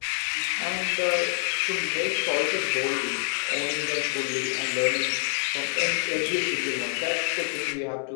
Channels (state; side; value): silent; right; 60 dB below the other